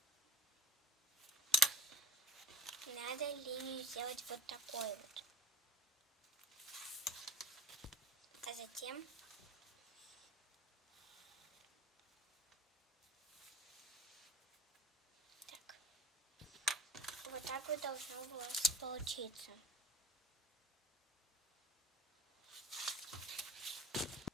Надо линию сделать вот такой вот. А затем так. Вот так вот должно у вас получиться.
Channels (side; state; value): both; normal; correlation 0.37